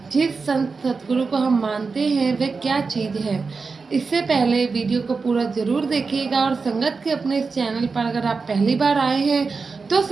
जिस संत सतगुरु को हम मानते हैं वे क्या चीज़ है। इससे पहले वीडियो को पूरा ज़रूर देखिएगा और संगत के अपने इस चैनल पर अगर आप पहली बार आए हैं तो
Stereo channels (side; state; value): left; quieter; 4.6 dB